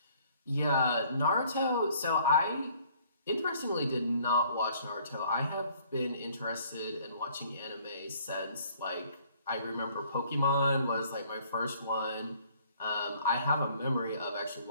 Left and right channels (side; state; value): both; inverted; correlation -0.59